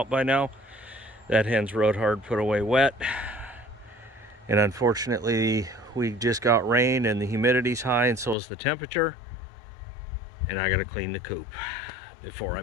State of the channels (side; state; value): right; drops out; at 8.3 s